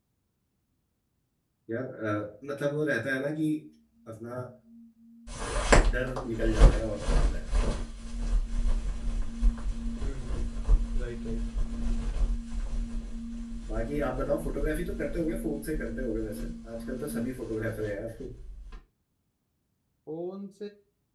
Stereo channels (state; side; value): identical; both; correlation 1.00